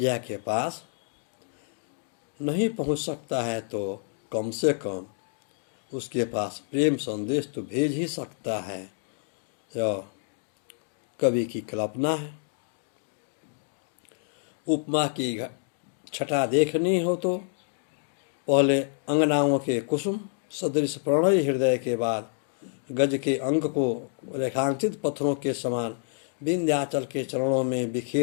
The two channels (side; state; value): right; silent; digital silence